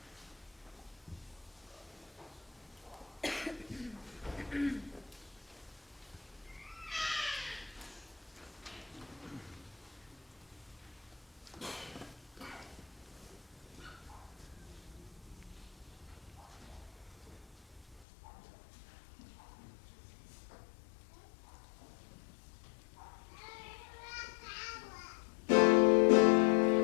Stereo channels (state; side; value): drops out; right; at 18.1 s